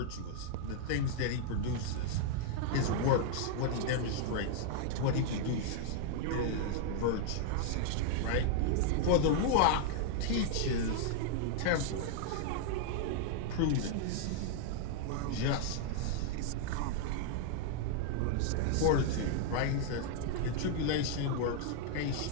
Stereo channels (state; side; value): different; both; correlation -0.01